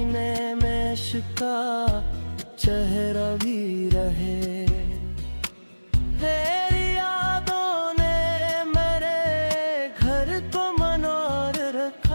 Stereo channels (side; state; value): both; inverted; correlation -1.00